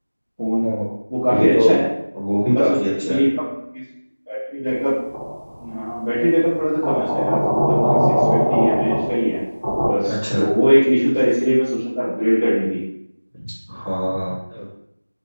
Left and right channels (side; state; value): both; inverted; correlation -1.00